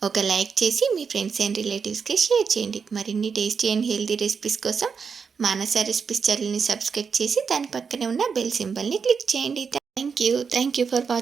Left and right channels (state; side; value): quieter; left; 5.9 dB